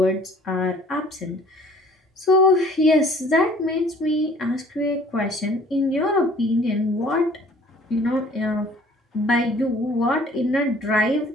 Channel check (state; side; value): normal; both; correlation 0.53